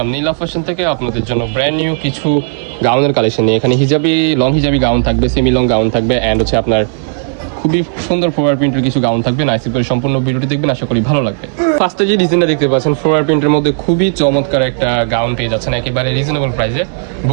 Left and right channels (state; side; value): silent; left; 64 dB below the other